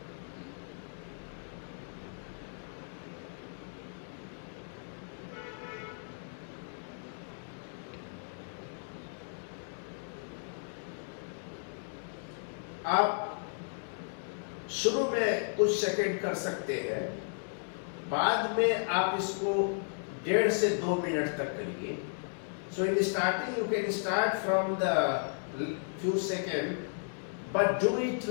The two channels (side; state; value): right; silent; digital silence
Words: आप शुरू में कुछ सेकंड कर सकते हैं, बाद में आप इसको 1.5 से 2 मिनट तक करिए। So in starting you can start from the few seconds, but do it